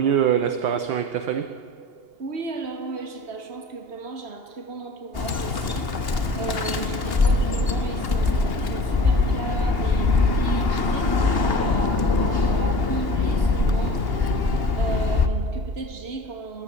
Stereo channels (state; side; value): late; left; 2.8 ms